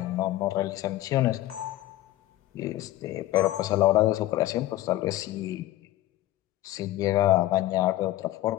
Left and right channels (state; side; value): quieter; right; 15.6 dB